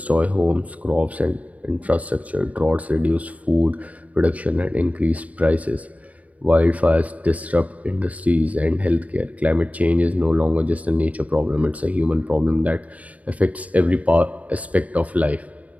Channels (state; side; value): late; left; 0.070 ms